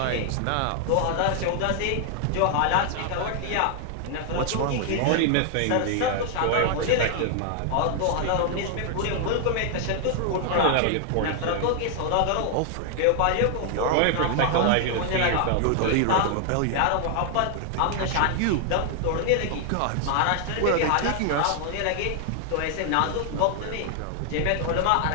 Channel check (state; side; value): different; both; correlation 0.00